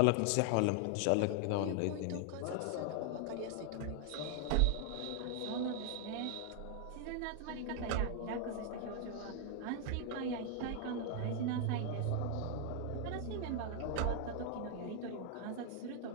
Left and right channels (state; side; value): different; both; correlation 0.00